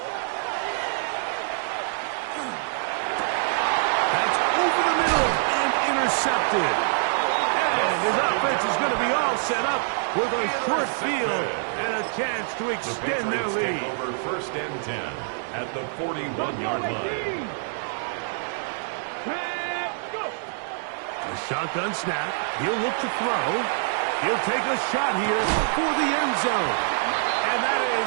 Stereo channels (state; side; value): silent; left; 60 dB below the other